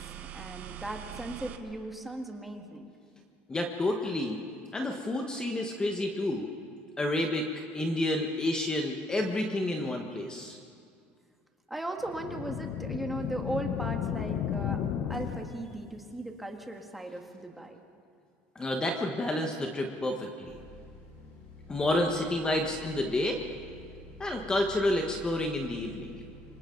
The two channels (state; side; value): normal; both; correlation 0.70